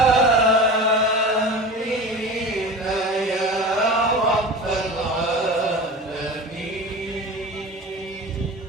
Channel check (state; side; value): normal; both; correlation 0.33